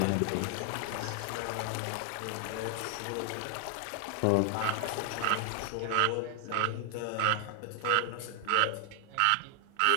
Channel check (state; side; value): different; both; correlation 0.00